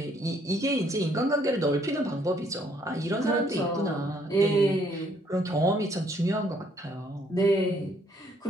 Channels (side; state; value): both; normal; correlation 0.66